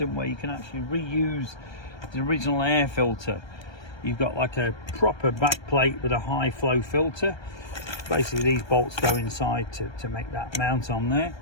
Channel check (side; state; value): right; late; 1.3 ms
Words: where you can actually reuse the original air filter. You've got like a proper back plate with a high flow filter. Basically these bolts go inside to make that mount on there,